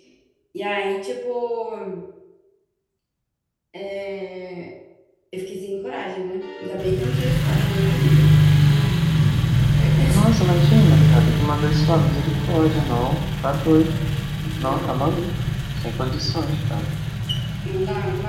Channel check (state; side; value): identical; both; correlation 1.00